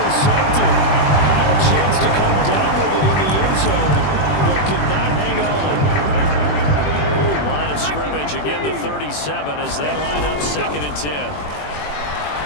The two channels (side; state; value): right; late; 21 ms